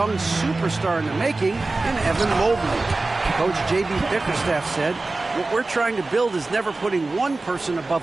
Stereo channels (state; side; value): quieter; left; 3.3 dB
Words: superstar in the making in Evan Mobley. Coach J.B. Bickerstaff said, "What we're trying to build is never putting one person